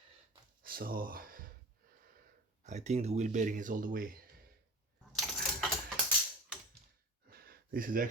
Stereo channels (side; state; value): both; normal; correlation 0.36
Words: So I think the wheel bearing is all the way. This is